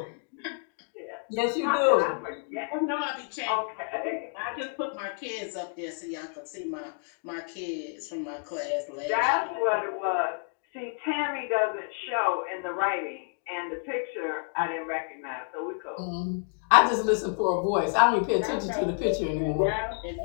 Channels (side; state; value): right; silent; 58 dB below the other